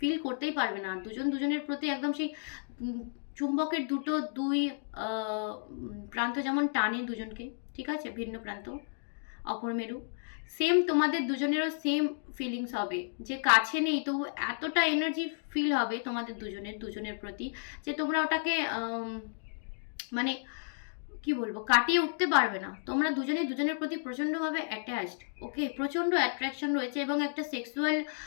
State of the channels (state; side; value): silent; right; digital silence